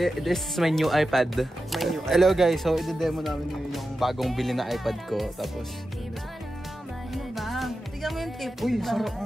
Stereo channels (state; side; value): normal; both; correlation 0.91